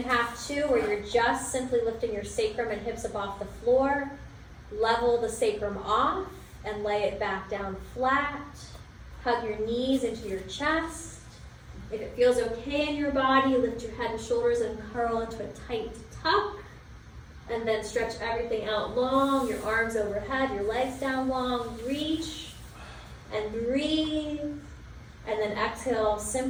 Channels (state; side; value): identical; both; correlation 1.00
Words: 2, where you're just simply lifting your sacrum and hips up off the floor. Level the sacrum off and lay it back down flat. Hug your knees into your chest. If it feels okay in your body, lift your head and shoulders and curl into a tight tuck. And then stretch everything out long, your arms overhead, your legs down long. Reach and breathe. And then exhale,